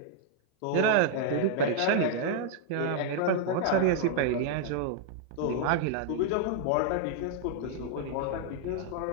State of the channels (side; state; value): both; different; correlation -0.01